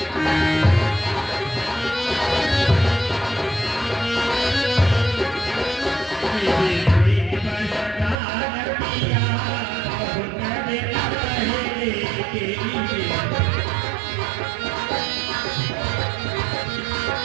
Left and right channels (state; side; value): drops out; left; at 8.2 s